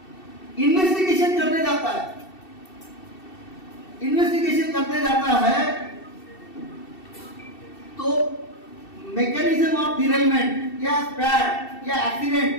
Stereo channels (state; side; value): late; right; 2.7 ms